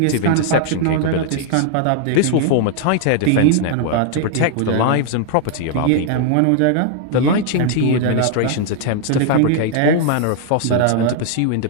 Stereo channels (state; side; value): different; both; correlation 0.00